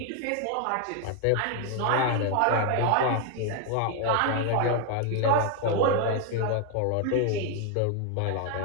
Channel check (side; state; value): both; different; correlation 0.01